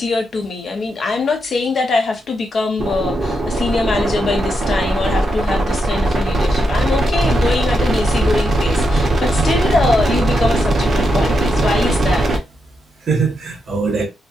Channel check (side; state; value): both; normal; correlation 0.84